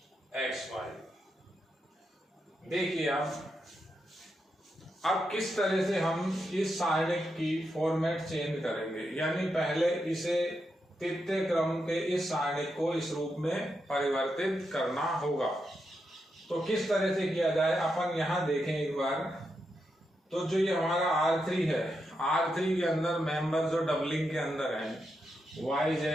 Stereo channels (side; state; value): both; normal; correlation 0.85